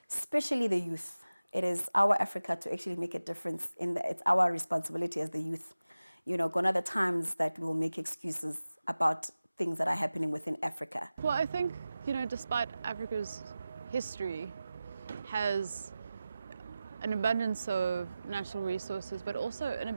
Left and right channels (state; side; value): inverted; both; correlation -0.95